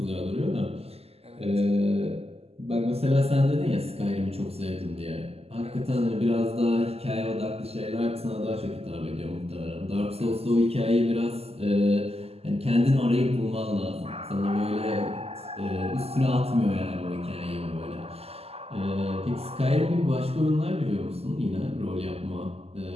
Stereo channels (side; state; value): left; late; 0.29 ms